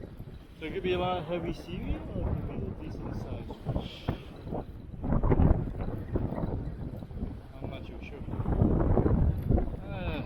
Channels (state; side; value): identical; both; correlation 1.00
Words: So it could be a lot of heavy seaweed or it could be a decent sized fish. I'm not too sure.